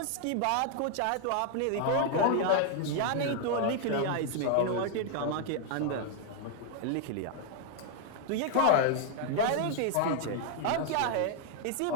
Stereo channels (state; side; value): different; both; correlation 0.00